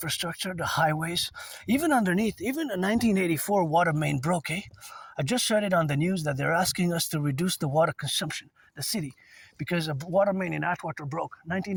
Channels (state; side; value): identical; both; correlation 1.00